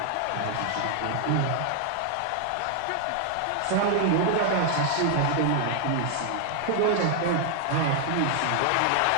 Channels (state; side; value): different; both; correlation 0.00